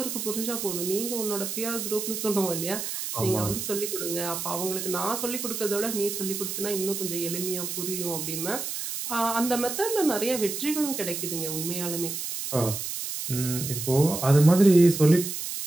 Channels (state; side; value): noise; right; hiss, 5 dB below the sound